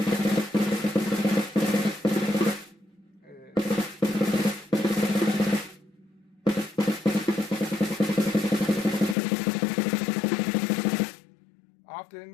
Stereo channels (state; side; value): drops out; right; at 9.2 s